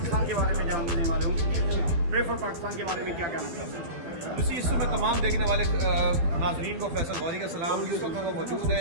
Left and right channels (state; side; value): late; left; 12 ms